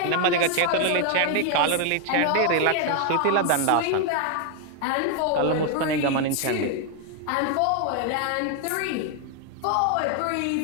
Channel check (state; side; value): different; both; correlation 0.01